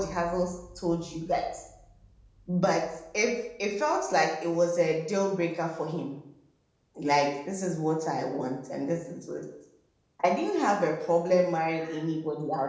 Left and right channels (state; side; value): identical; both; correlation 1.00